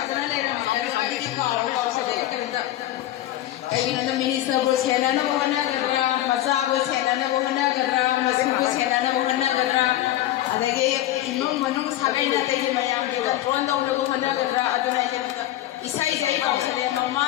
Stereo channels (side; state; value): right; quieter; 14.0 dB